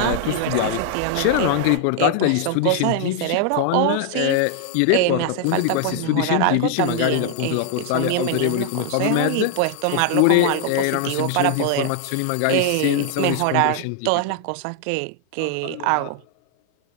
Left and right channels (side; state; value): both; different; correlation 0.00